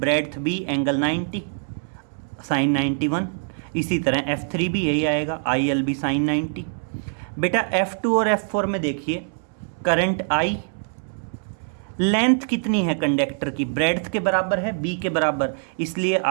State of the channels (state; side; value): silent; left; digital silence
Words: B, angle 90, sine 91। इसी तरह F3 भी यही आएगा, ILB साइन 90। बेटा F2 और F4 में देखिए, करंट I, लेंथ कितनी है कंडक्टर की, ब्रेड्थ के बराबर है, बी के बराबर, इसलिए